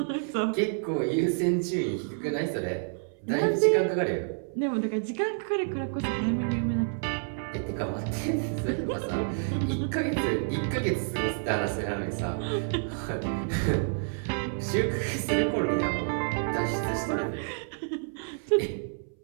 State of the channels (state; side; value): silent; left; 59 dB below the other